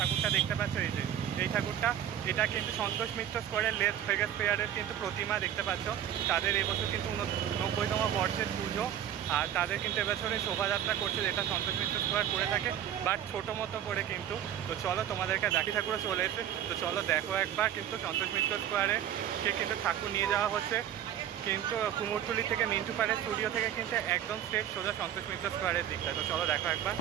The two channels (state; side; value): quieter; left; 10.4 dB